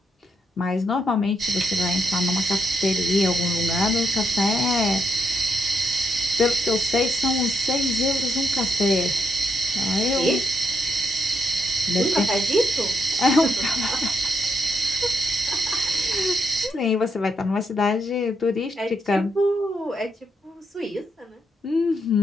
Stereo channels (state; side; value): normal; both; correlation 0.79